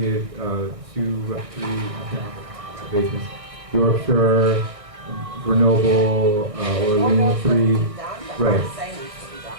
3 renovations. Yorkshire, Grenoble, Orleans, 3, right.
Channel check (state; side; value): late; left; 1.6 ms